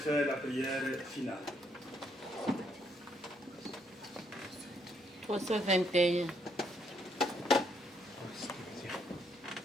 la prière finale. 321.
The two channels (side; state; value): both; normal; correlation 0.73